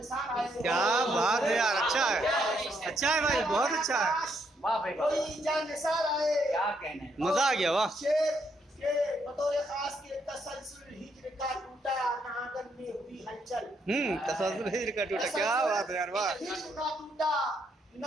आए। क्या बात है यार, अच्छा है भाई, बहुत अच्छा है, वाह भाई वाह कोई जानसार आए। क्या कहने हैं। मजा आ गया, वाह। शेर के बतौर खास के तसलसल हिज्र का टूटा नागन में हुई हलचल। तसल्सल हिज्र का टूटा, क्या बात है यार, वाह। हिज्र का टूटा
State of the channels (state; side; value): normal; both; correlation 0.75